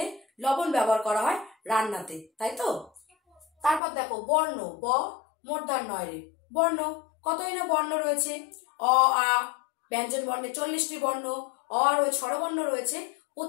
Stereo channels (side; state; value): right; drops out; at 3.8 s